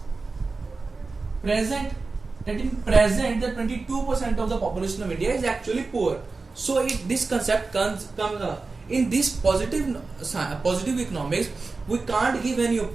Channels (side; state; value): left; quieter; 4.0 dB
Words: present, that in present the 22% of the population of India is actually poor. So this concept comes in this positive economics. We can't give any